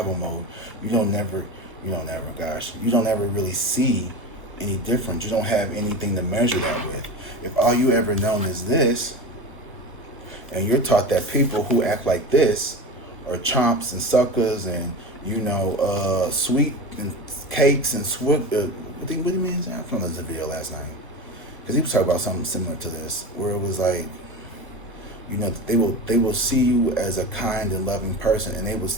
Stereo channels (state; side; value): normal; both; correlation 0.27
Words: mode, you don't ever really see any difference. You don't have anything to measure that with. If all you ever known is this, and you're taught that people who act like this are chomps and suckers and, sweet and cakes and what do you mean? I found this video last night. Because he was talking about something similar to this, where it was like, they will see you as a kind and loving person, and they will,